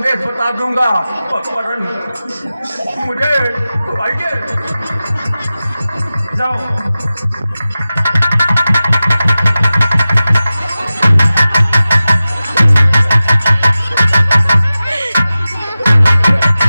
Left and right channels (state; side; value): inverted; both; correlation -0.95